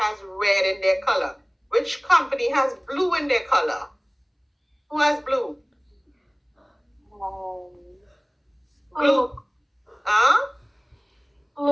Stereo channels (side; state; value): both; identical; correlation 1.00